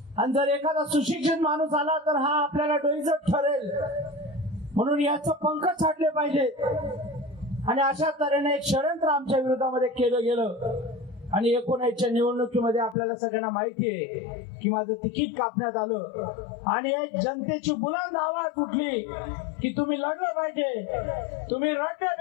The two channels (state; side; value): drops out; right; at 13.0 s